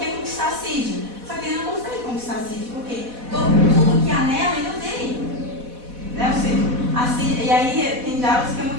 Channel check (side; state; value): left; late; 4.1 ms